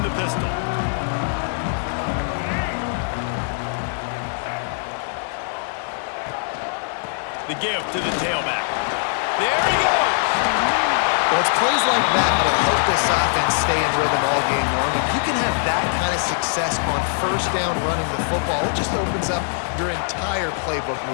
the pistol. The give to the tailback. There he goes! Well, it's plays like that that'll help this offense stay in rhythm all game long. If you can have that kind of success on first down running the football, it just opens up your entire playbook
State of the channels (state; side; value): silent; right; digital silence